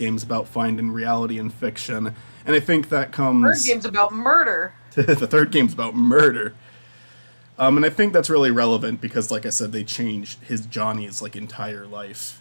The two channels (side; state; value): both; inverted; correlation -1.00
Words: is about finding reality and fiction. And I think that comes. Third game's about murder. The third game's about murder. And I think that's really relevant because, like I said, they changed Johnny's like entire life,